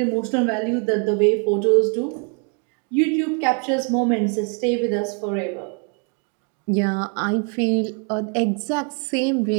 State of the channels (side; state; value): left; quieter; 37.6 dB